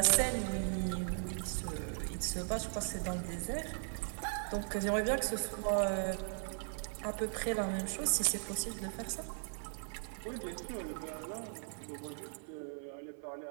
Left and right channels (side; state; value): left; silent; 52 dB below the other